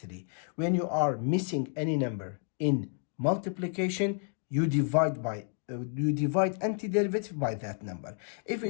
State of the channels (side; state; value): right; silent; 56 dB below the other